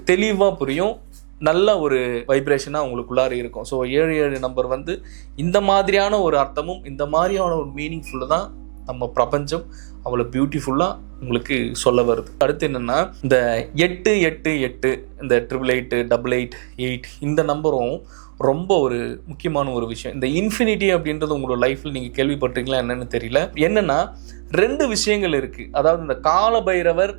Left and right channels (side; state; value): left; silent; digital silence